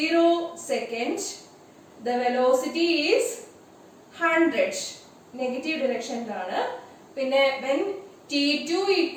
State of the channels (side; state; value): both; identical; correlation 1.00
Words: seconds, the velocity is 100 negative ഡിറക്ഷനിലാണ്. പിന്നെ when T2